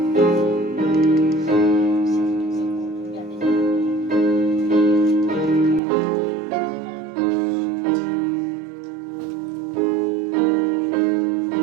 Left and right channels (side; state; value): left; drops out; at 5.8 s